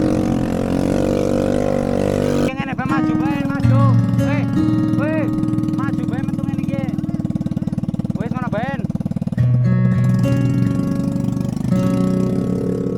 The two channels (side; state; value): both; identical; correlation 1.00